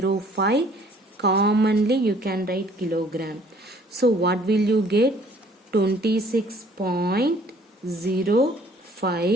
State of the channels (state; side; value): normal; both; correlation 0.57